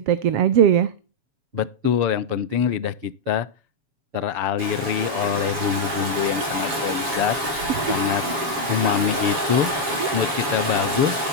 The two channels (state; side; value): late; left; 7.2 ms